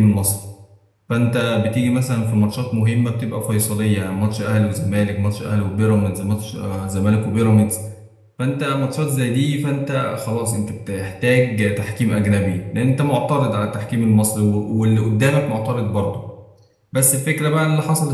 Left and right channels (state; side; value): identical; both; correlation 1.00